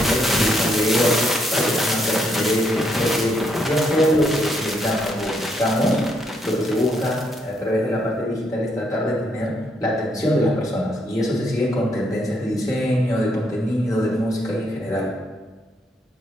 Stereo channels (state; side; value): normal; both; correlation 0.74